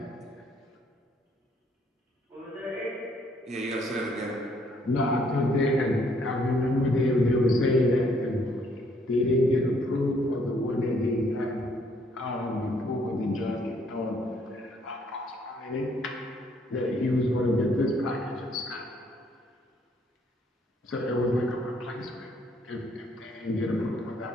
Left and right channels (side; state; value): both; normal; correlation 0.67